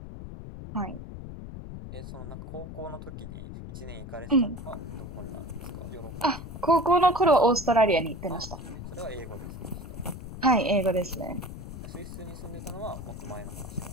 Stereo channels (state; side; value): noise; left; rumble, 10 dB below the sound